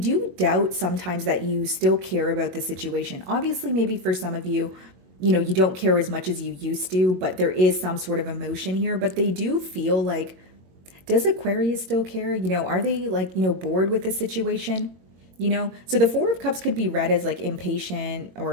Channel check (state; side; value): late; left; 22 ms